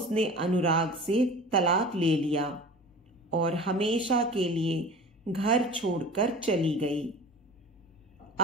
अनुराग से तलाक ले लिया और हमेशा के लिए घर छोड़कर चली गई।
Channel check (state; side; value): normal; both; correlation 0.38